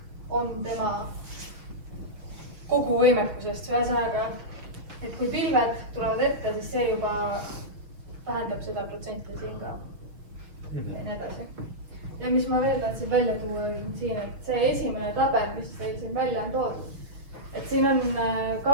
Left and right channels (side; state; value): left; late; 6.3 ms